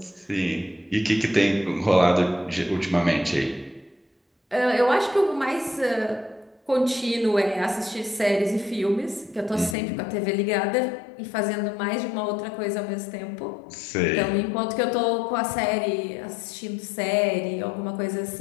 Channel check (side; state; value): right; drops out; at 9.8 s